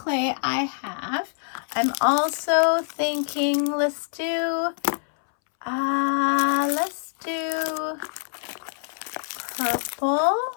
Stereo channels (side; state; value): right; silent; 62 dB below the other